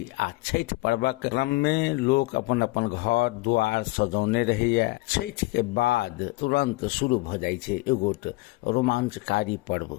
आ छठ पर्वक क्रम में लोग अपन अपन घर द्वार सजौने रहिए। छठ के बाद तुरंत शुरू भ जाय छै एगोट रोमांचकारी पर्व।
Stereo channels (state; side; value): quieter; right; 21.9 dB